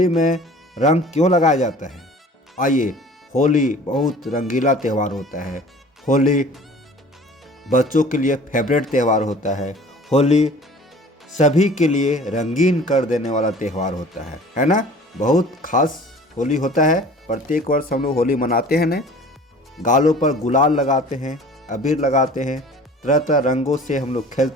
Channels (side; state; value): both; normal; correlation 0.46